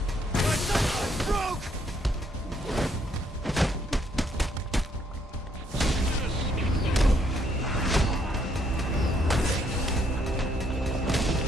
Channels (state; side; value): normal; both; correlation 0.70